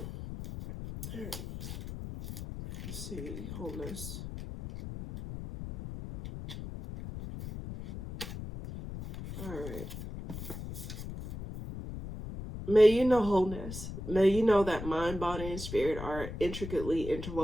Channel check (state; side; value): noise; left; rumble, 9 dB below the sound